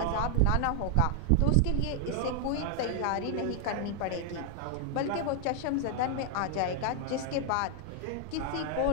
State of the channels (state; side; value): different; both; correlation 0.00